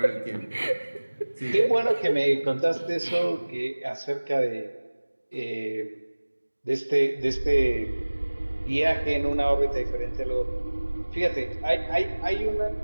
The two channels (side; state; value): both; inverted; correlation -1.00